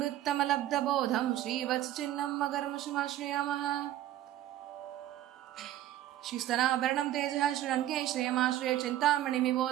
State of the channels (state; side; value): quieter; left; 13.2 dB